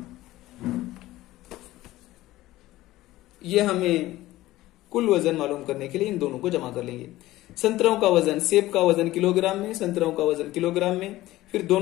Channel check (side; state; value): right; quieter; 16.6 dB